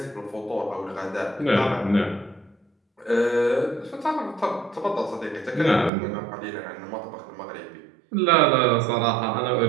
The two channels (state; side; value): drops out; left; at 5.9 s